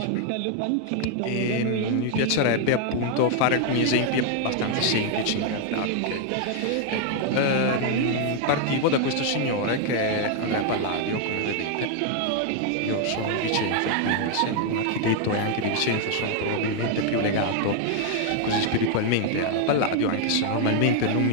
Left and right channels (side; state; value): both; different; correlation 0.00